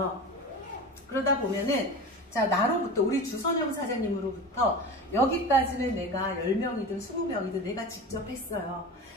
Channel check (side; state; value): both; normal; correlation 0.31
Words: 그러다 보면은 자, 나로부터 우리 주선영 사장님으로부터 여기까지는 내가 10명이든 20명이든 내가 직접 했어요.